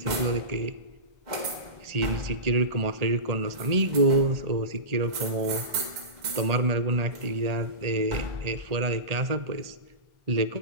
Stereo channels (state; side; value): late; left; 1.8 ms